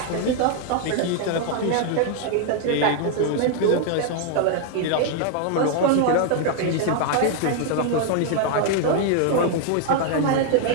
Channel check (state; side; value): different; both; correlation 0.00